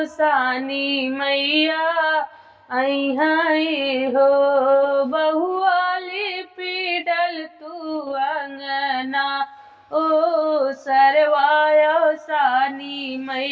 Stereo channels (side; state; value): both; identical; correlation 1.00